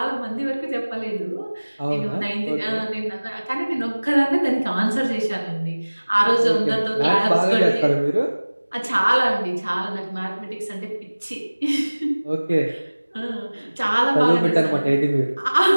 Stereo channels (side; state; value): both; inverted; correlation -1.00